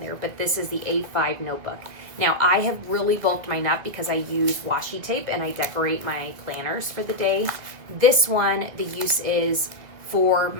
But this is the A5 notebook. Now, I have really bulked mine up because I use washi tape and I decorate my planners for the day. This one, the use is for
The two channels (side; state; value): left; late; 2.0 ms